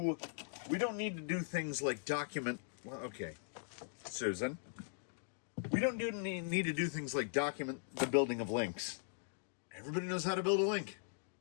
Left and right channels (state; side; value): silent; right; digital silence